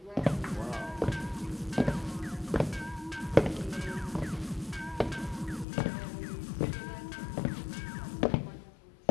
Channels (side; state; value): right; drops out; at 5.7 s